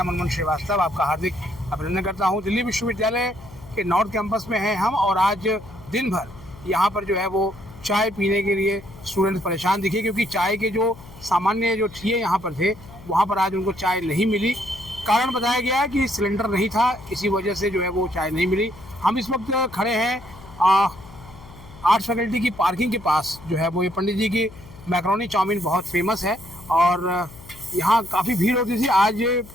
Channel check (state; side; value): noise; left; hum, 19 dB below the sound